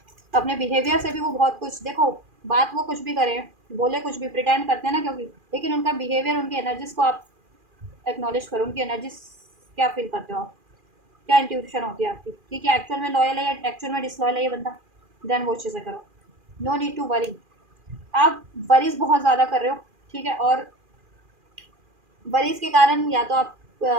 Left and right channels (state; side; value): late; left; 2.4 ms